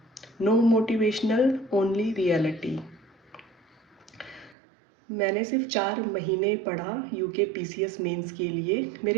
No motivational, only reality. मैंने सिर्फ 4 महीने पढ़ा यूके पीसीएस मेंस के लिए।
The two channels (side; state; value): left; drops out; at 4.5 s